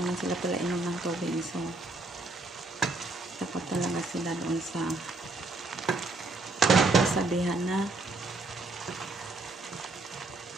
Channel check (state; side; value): quieter; left; 3.1 dB